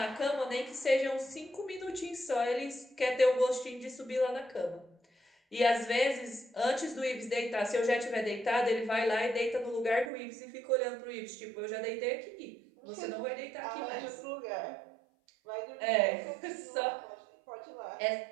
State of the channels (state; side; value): drops out; left; at 10.1 s